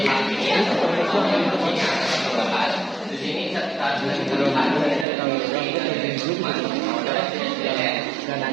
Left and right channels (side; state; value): left; drops out; at 5.1 s